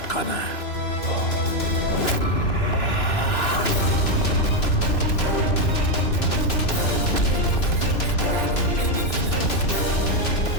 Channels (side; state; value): right; late; 2.9 ms